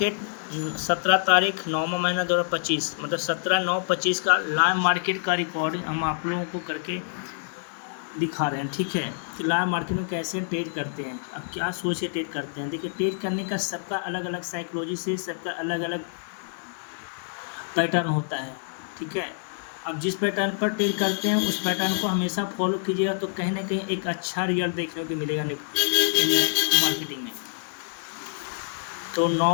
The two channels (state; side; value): silent; right; digital silence